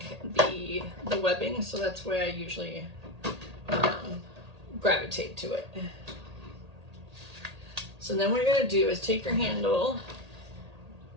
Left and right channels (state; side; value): late; left; 1.8 ms